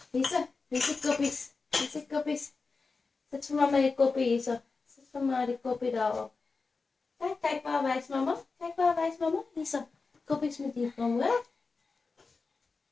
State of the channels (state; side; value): quieter; right; 4.3 dB